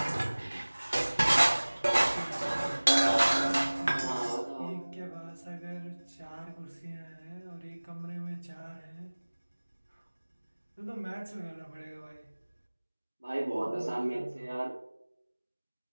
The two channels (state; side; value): inverted; both; correlation -1.00